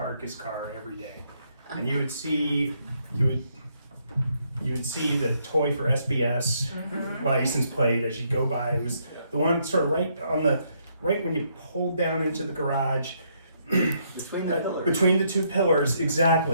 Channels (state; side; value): inverted; both; correlation -0.73